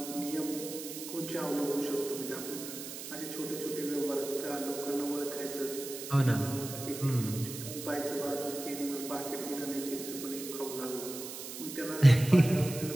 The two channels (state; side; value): noise; right; hiss, 9 dB below the sound